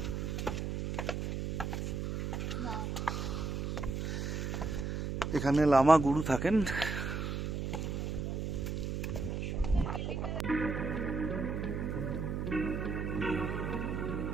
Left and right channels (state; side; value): noise; right; hum, 2 dB below the sound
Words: এখানে লামা গুরু থাকেন।